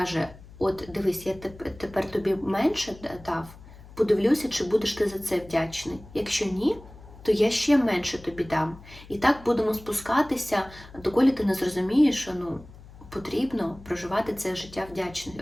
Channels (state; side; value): noise; left; hum, 19 dB below the sound